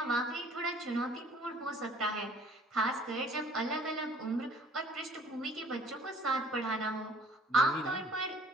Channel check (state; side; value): normal; both; correlation 0.54